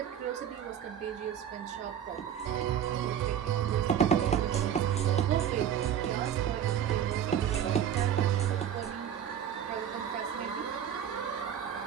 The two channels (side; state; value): left; quieter; 9.3 dB